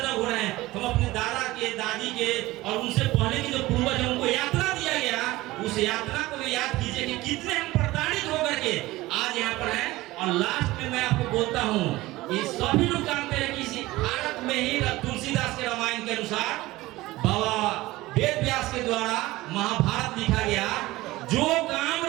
हो रहे हैं? हम अपने दादा के, दादी के और उनसे पहले के जो पूर्वज हैं उनको यात्रा दिया गया, उस यात्रा को भी याद कीजिए कि कितने हम प्रताड़ित होकर के आज यहाँ पर हैं। और लास्ट में मैं आपको बोलता हूँ, ये सभी लोग जानते हैं कि इसी भारत में ही तुलसीदास के रामायण के अनुसार बाबा वेद व्यास के द्वारा महाभारत लिखा गया। जो काम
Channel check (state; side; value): quieter; left; 18.6 dB